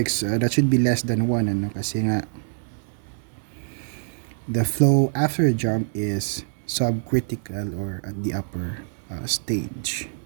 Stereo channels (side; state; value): left; silent; 62 dB below the other